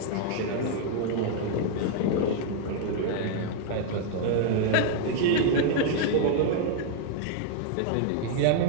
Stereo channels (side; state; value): both; different; correlation 0.00